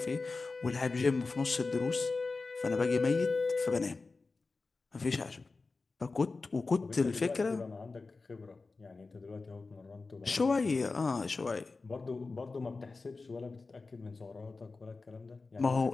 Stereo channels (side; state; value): right; quieter; 3.9 dB